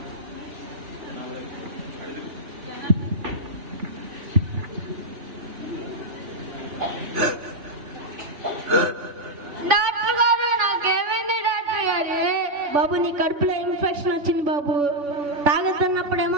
డాక్టర్ గారు, నాకేమైంది డాక్టర్ గారు? బాబు, నీ కడుపులో ఇన్ఫెక్షన్ వచ్చింది బాబు. తాగుతున్నప్పుడేమో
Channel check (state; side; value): late; left; 3.5 ms